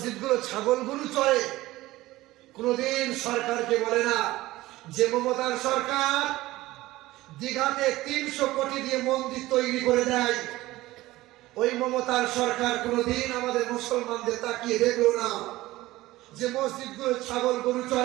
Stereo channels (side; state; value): left; quieter; 17.6 dB